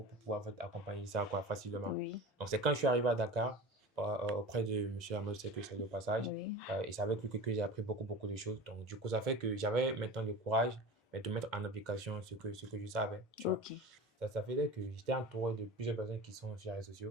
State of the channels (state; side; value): normal; both; correlation 0.33